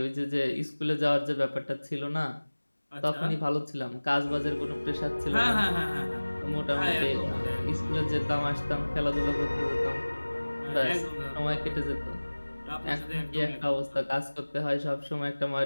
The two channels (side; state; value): both; inverted; correlation -1.00